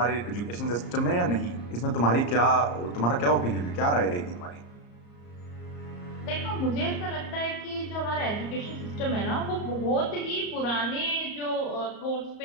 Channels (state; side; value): late; right; 34 ms